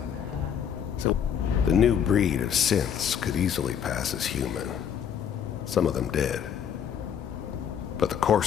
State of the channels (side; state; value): right; quieter; 8.3 dB